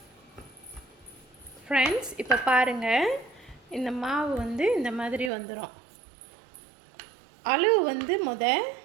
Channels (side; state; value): left; drops out; at 5.3 s